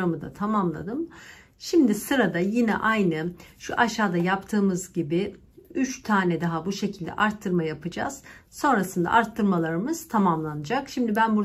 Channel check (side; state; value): both; identical; correlation 1.00